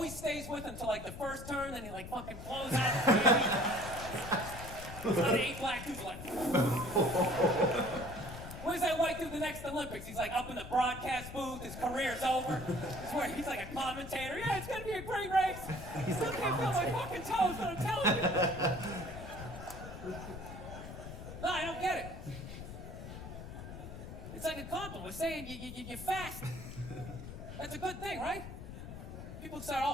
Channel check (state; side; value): noise; left; rumble, 10 dB below the sound